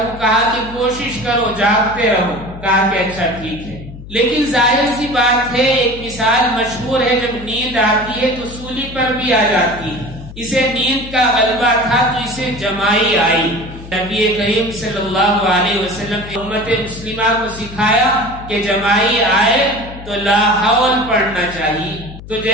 کہا کہ کوشش کرو، جاگتے رہو۔ کہا کہ اچھا ٹھیک ہے۔ لیکن ظاہر سی بات ہے، ایک مثال مشہور ہے، جب نیند آتی ہے تو سولی پر بھی آ جاتی ہے۔ اسے نیند کا غلبہ تھا تو اسے جمائی آئی۔ نبی کریم صلی اللہ علیہ وسلم نے امت مسلمہ کو سکھایا کہ جمائی آئے تو لا حول پڑھنا چاہیے۔ تو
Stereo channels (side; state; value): left; noise; hum, 14 dB below the sound